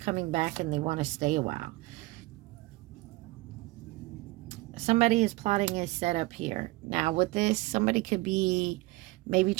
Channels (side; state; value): left; quieter; 21.5 dB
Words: back and they want to stay a while. Somebody is plotting a setup here. Now with this, somebody could be maybe